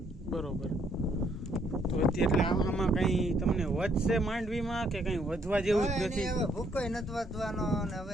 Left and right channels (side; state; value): both; normal; correlation 0.69